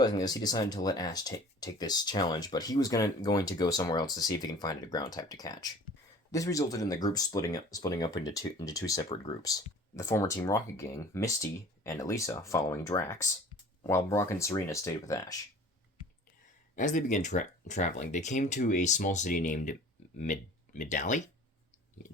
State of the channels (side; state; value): both; normal; correlation 0.45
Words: this, he decided to let Ash take this challenge, but he was going to go somewhere else to see if he can find a ground type to catch. This resulted in the group splitting up into two separate groups. The former Team Rocket gang, Misty and Elisa, following Drax, while Brock and Serena stayed with Ash. As they began traveling, they came to a small city named Midali?